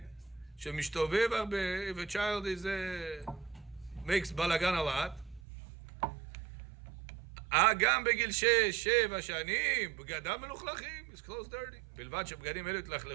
שמשתובב הרבה, if a child is makes balagan a lot, גם בגיל 6-7 שנים, בגדם מלוכלכים, his clothes dirty. בלבד שבגדים אלו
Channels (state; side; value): drops out; left; at 5.4 s